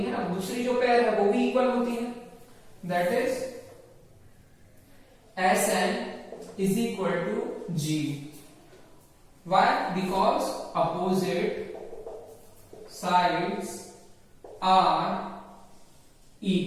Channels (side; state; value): both; identical; correlation 1.00